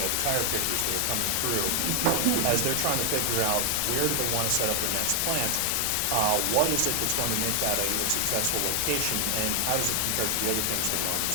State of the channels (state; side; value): different; both; correlation 0.00